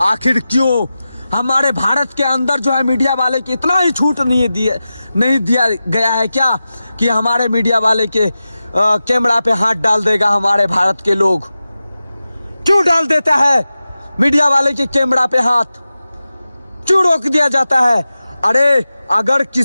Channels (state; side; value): inverted; both; correlation -0.94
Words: आखिर क्यों? हमारे भारत के अंदर जो है मीडिया वाले की इतना ही छूट नहीं दिया गया है क्या कि हमारे मीडिया वाले के कैमरा पे हाथ डाल देगा हमारे भारत के लोग? क्यों डाल देता है मीडिया वाले के कैमरा पे हाथ? क्यों रोक दिया जाता है? अरे अगर